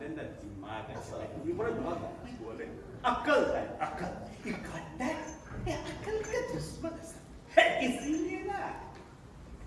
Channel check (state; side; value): identical; both; correlation 1.00